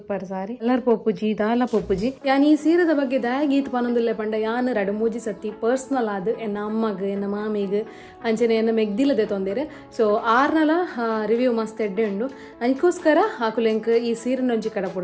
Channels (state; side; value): identical; both; correlation 1.00